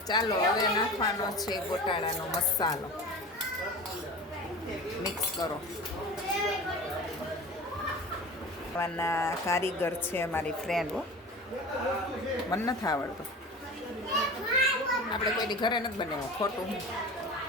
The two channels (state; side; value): normal; both; correlation 0.35